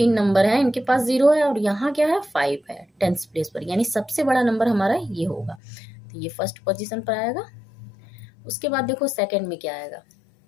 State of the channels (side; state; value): right; drops out; at 5.6 s